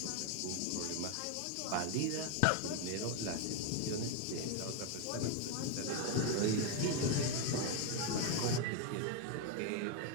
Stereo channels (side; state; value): both; different; correlation 0.01